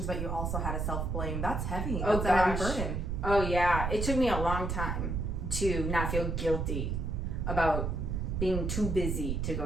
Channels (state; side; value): noise; right; rumble, 1 dB below the sound